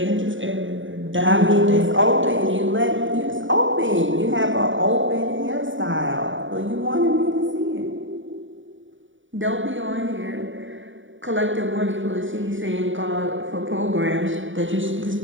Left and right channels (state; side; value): late; left; 0.56 ms